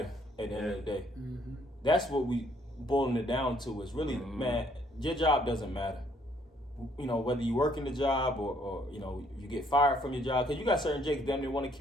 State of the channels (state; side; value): normal; both; correlation 0.66